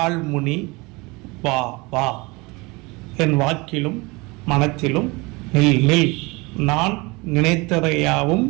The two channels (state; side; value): quieter; left; 25.2 dB